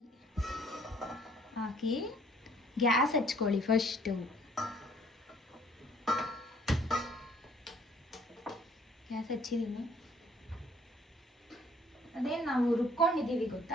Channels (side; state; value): both; normal; correlation 0.60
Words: ಹಾಕಿ ಗ್ಯಾಸ್ ಹಚ್ಕೊಳ್ಳಿ ಫಸ್ಟು. ಗ್ಯಾಸ್ ಹಚ್ಚಿದ್ದೀನಿ. ಅದೇ ನಾವು ರುಬ್ಕೊಂಡಿದ್ದೀವಿ